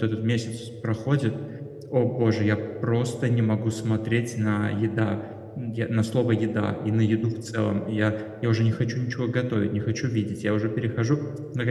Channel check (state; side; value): identical; both; correlation 1.00